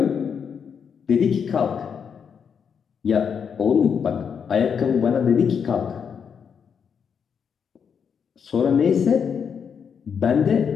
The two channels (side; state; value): right; quieter; 6.9 dB